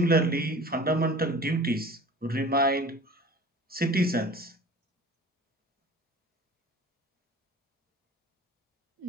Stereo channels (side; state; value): both; normal; correlation 0.41